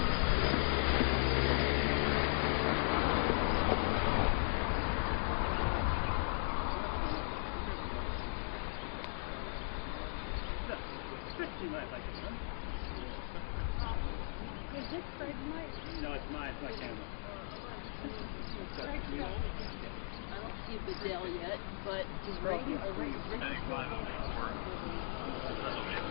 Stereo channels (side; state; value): right; silent; digital silence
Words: You might like it, huh? Is this Fred's mic? No, it's mine. It's my camera. I don't see the Dell yet, but is ready.